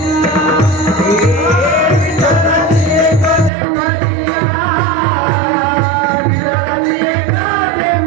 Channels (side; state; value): left; drops out; at 3.5 s